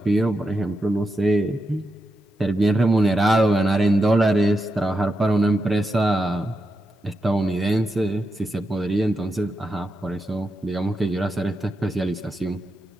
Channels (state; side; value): normal; both; correlation 0.87